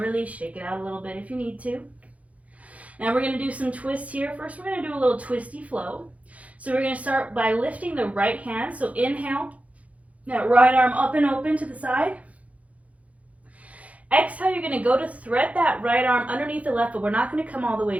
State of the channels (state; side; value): late; left; 0.067 ms